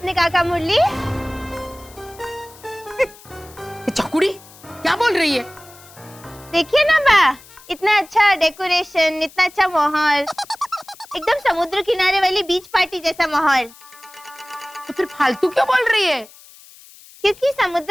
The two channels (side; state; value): left; noise; hiss, 22 dB below the sound